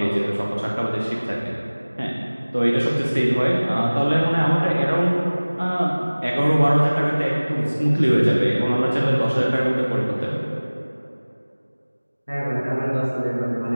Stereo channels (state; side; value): inverted; both; correlation -1.00